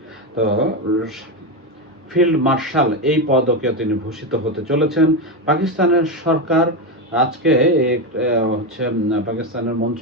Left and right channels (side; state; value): both; normal; correlation 0.12